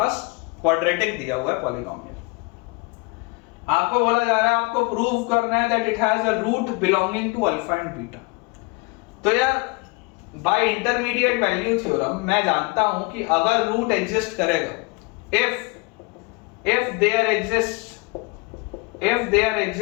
क्वाड्रेटिक दिया हुआ है, पॉलिनोमियल। आपको बोला जा रहा है आपको प्रूव करना है that it has a root belonging to alpha and beta. तो यार बाय इंटरमीडिएट वैल्यू थ्योरम मैं जानता हूं कि अगर रूट एग्जिस्ट करेगा, if there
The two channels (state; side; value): quieter; right; 28.0 dB